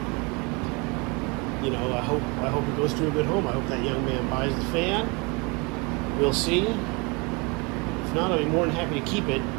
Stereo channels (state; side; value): quieter; left; 29.0 dB